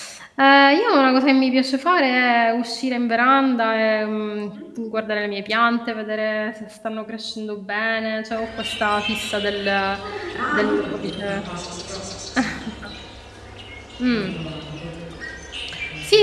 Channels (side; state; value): both; identical; correlation 1.00